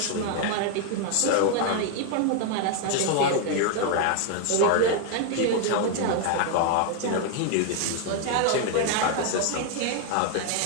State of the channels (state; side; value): different; both; correlation 0.00